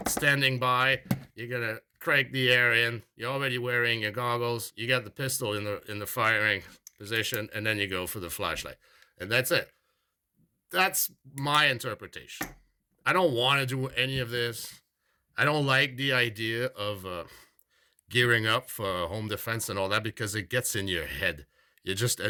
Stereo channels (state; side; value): identical; both; correlation 1.00